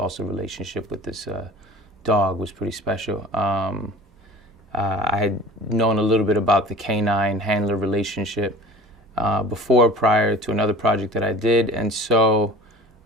relationship with this dog was pretty special. I had known a little bit about the canine handler relationship prior to another project that I did, and so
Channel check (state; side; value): normal; both; correlation 0.41